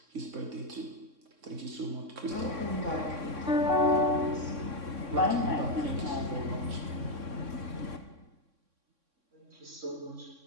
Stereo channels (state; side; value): late; left; 3.6 ms